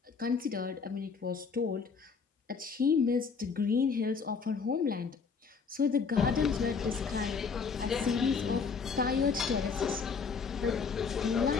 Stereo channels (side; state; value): right; quieter; 5.4 dB